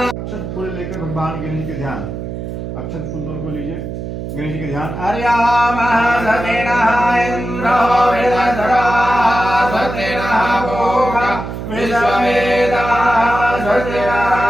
अक्षत फूल लेकर भगवान गणेश के ध्यान, अक्षत फूल दोनों को लीजिए, गणेश जी के ध्यान। अर्याम सतेनः इंद्रो वेदधरा सतेनः भोगा विश्ववेदा सतेनः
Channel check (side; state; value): right; noise; hum, 7 dB below the sound